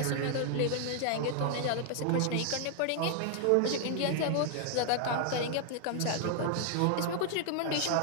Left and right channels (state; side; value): different; both; correlation 0.00